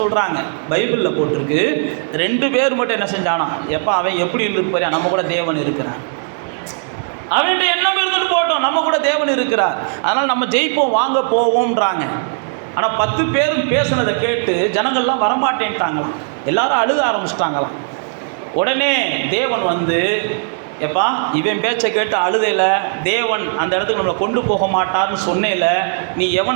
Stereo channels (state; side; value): silent; left; digital silence